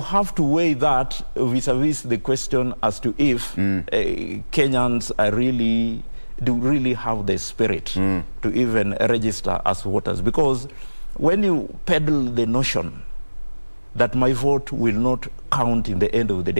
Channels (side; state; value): both; inverted; correlation -1.00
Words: to weigh that vis-a-vis the question as to if Kenyans are do really have the spirit to even register as voters, because when you peddle the notion that my vote will not count in the end of the